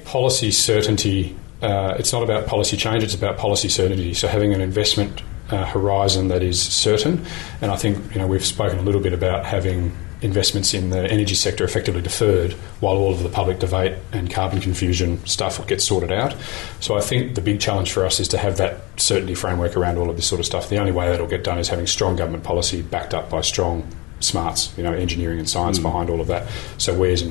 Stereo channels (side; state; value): right; quieter; 24.8 dB